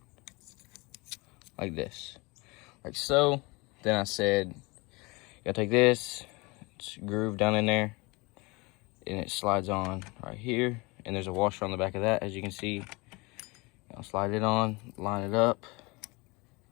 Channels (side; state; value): right; quieter; 25.8 dB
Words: like this, like so. Then I said you gotta take this, it's grooved down in there, and it slides on right here, and there's a washer on the back of that, as you can see. I'll slide it on, line it up,